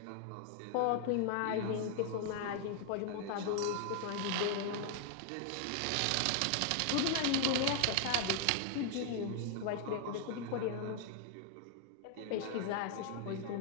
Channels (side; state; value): both; different; correlation 0.00